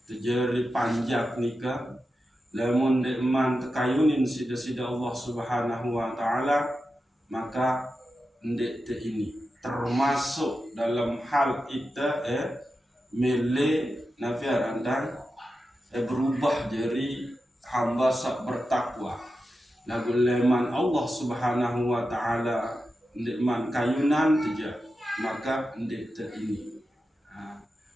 terjadi panjat nikah lamun deman tekayunin Sidi Allah Subhanahu wa taala, maka ndek te ini termasuk dalam hal kita mele nafiaran dan berubah jadi hamba sak bertakwa. Lagu leman Allah Subhanahu wa taala ndek man kayunan tidak, maka ndek te ini.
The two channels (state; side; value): normal; both; correlation 0.90